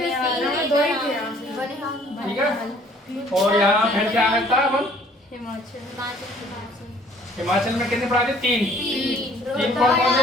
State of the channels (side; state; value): both; normal; correlation 0.57